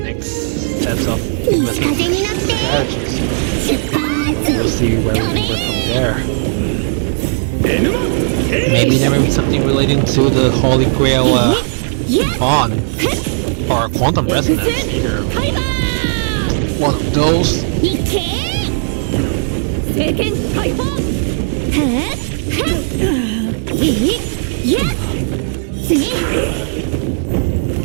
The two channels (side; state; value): left; silent; digital silence